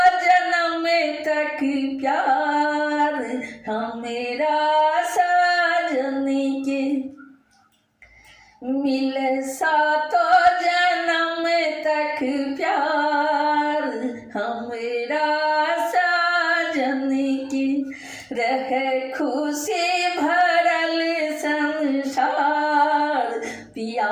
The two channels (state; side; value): identical; both; correlation 1.00